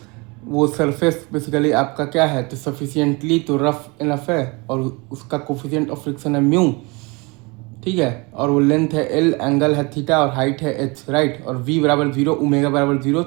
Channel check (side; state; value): left; quieter; 27.3 dB